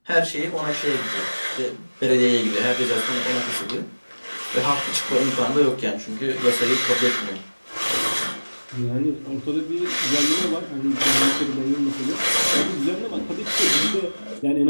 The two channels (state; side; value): inverted; both; correlation -1.00